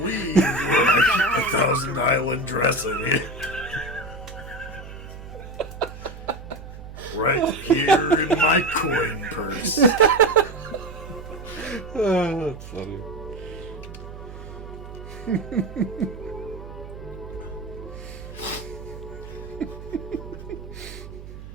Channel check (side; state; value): right; noise; hum, 13 dB below the sound